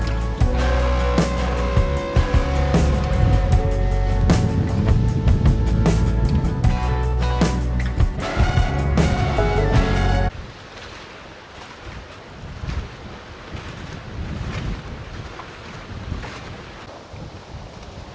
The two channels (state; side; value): identical; both; correlation 1.00